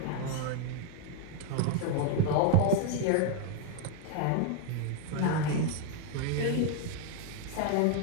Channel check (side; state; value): both; different; correlation 0.00